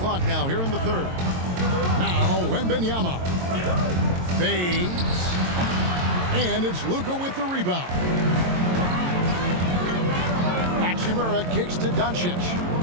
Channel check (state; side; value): late; left; 22 ms